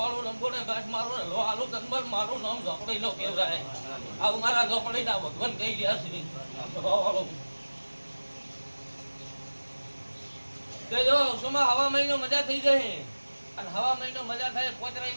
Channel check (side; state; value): both; inverted; correlation -1.00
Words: લંબોને ઘાસ મારું ને લો આલુ તનબર મારું નામ ઝોપડી નો કહેવાય. આવું મારા ઝોપડીના ભગવાન કહી ગયા છે ભાવવાળું. જો સોમાં હવા મહિનો મજા થઈ જાય. અને હવા મહિનો મજા થાય 5